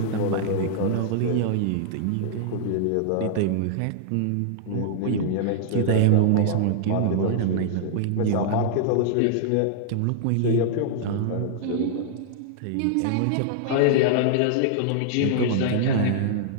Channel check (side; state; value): both; different; correlation -0.01